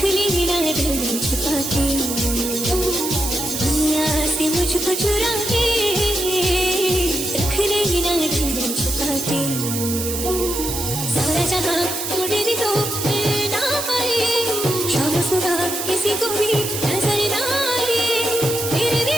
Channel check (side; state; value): right; noise; hiss, 4 dB below the sound